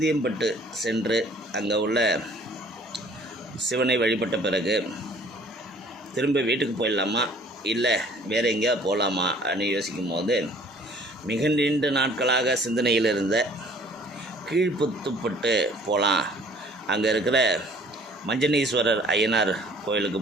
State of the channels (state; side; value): normal; both; correlation 0.55